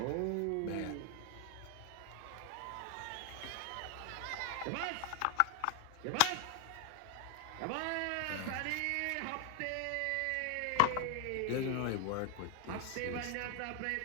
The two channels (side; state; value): both; different; correlation 0.00